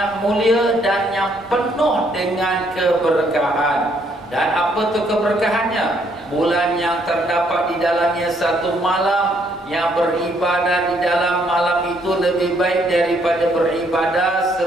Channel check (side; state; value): both; normal; correlation 0.69